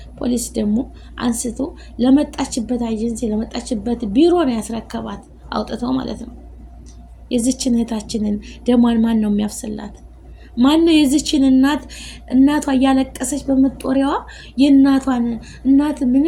ፖሊስ ደግሞ አንስቶ ለመጣችበት ኤጀንሲ ለመጣችበት ቢሮ ነው ያስረከባት፣ አውጥተው ማለት ነው። የዚችን እህታችንን ደሟን ማን ነው የሚያፍስላት? ማን ነው የዚችን እናቷ እያለቀሰች በመጦሪያዋ የእናቷን እናት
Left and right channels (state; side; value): identical; both; correlation 1.00